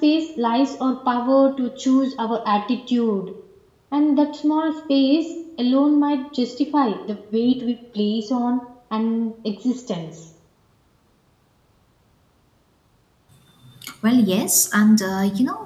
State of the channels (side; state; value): both; identical; correlation 1.00